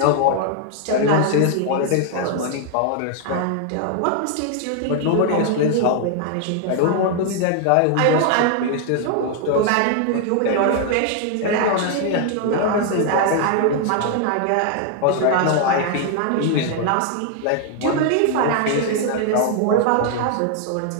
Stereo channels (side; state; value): both; different; correlation 0.00